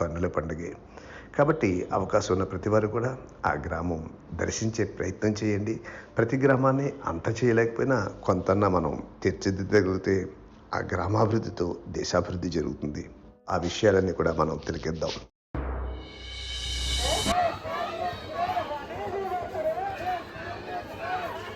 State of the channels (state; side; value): identical; both; correlation 1.00